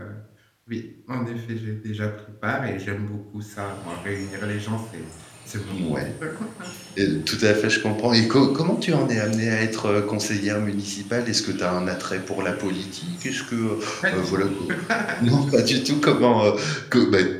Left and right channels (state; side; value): identical; both; correlation 1.00